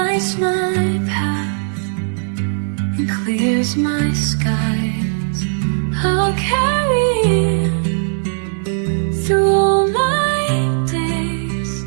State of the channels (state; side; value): silent; left; digital silence